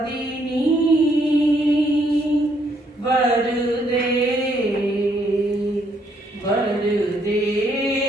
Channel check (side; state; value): both; normal; correlation 0.71